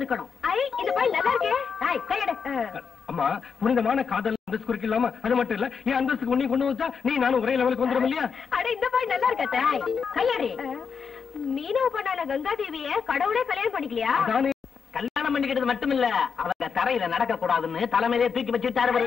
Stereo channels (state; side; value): quieter; right; 6.1 dB